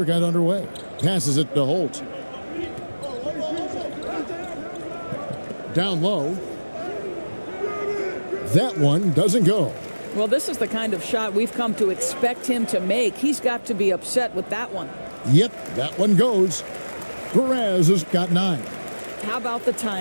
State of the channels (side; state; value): both; inverted; correlation -1.00